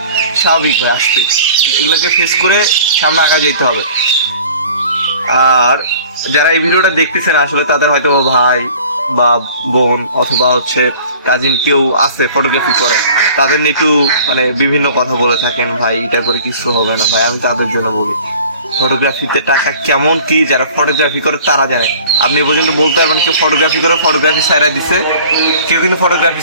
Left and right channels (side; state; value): both; inverted; correlation -0.47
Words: স্বাভাবিক ভাই, আসবেই। এগুলোকে ফেস করে সামনে আগা যেতে হবে। আর যারা এই ভিডিওটা দেখতেছেন, আসলে তাদের হয়তো ভাই বা বোন অথবা হচ্ছে কাজিন কেউ আছে ফটোগ্রাফি করে, তাদের নিয়ে একটু বিভিন্ন কথা বলে থাকেন, ভাই এটা করে কিছু হবে না। ভাই, আমি তাদের জন্য বলি, ফটোগ্রাফিতে টাকা কেমন কি যারা ফটোগ্রাফি করে তারা জানে। আপনি এ পর্যন্ত বলতে পারবেন কেউ ফটোগ্রাফি করে ফটোগ্রাফি সাইরা দিছে? কেউ কিন্তু ফটোগ্রাফি